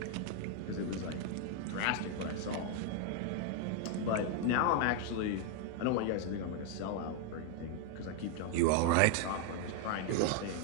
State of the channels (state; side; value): different; both; correlation 0.00